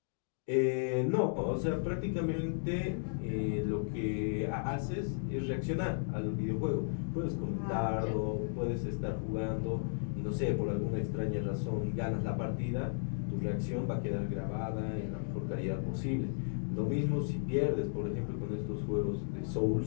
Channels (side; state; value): right; silent; digital silence